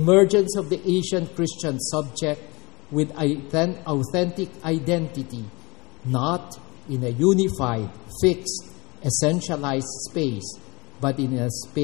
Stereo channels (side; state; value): right; quieter; 25.9 dB